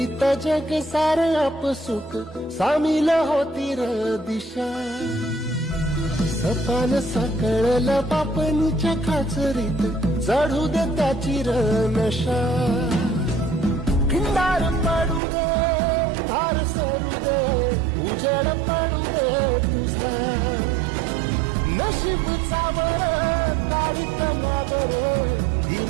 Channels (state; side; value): drops out; left; at 15.2 s